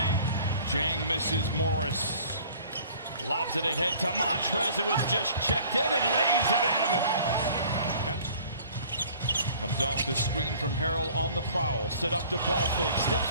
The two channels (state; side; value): inverted; both; correlation -0.51